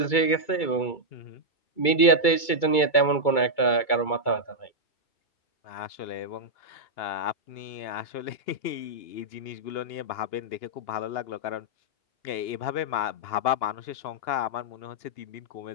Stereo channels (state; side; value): late; right; 2.3 ms